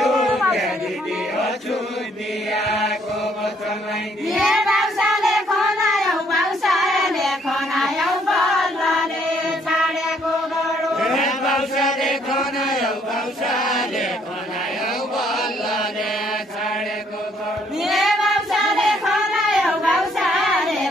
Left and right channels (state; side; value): normal; both; correlation 0.66